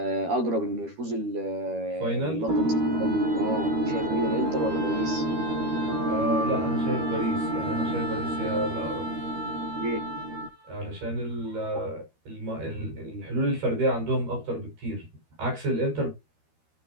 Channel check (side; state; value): left; late; 13 ms